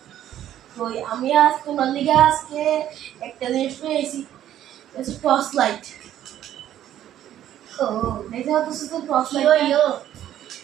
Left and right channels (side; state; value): left; quieter; 11.7 dB